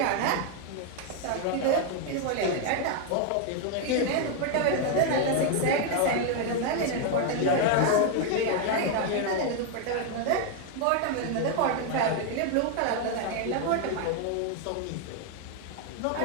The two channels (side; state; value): both; different; correlation 0.00